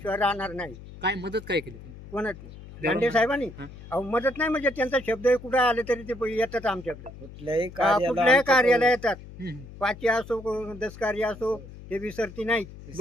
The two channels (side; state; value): left; noise; hum, 16 dB below the sound